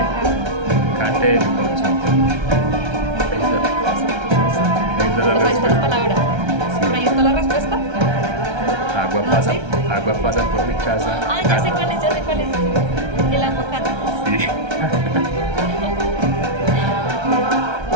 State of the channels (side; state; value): left; late; 1.3 ms